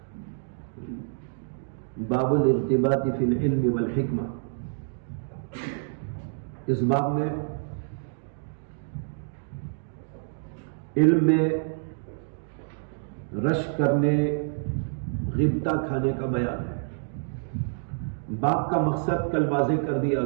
باب الارتباط فی العلم والحکمہ۔ اس باب میں علم میں رش کرنے، غبطہ کھانے کا بیان ہے۔ باب کا مقصد کل واضح کر دیا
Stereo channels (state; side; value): silent; left; digital silence